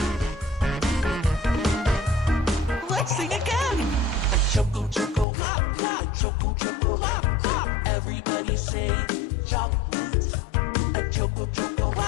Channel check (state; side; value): drops out; right; at 5.2 s